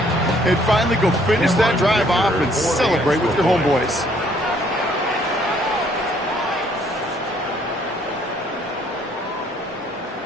And finally go finish that drive off and celebrate with your homeboys.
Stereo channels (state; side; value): normal; both; correlation 0.63